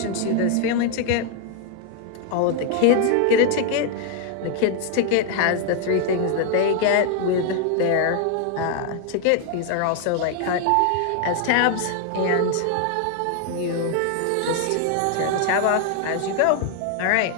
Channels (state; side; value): different; both; correlation 0.00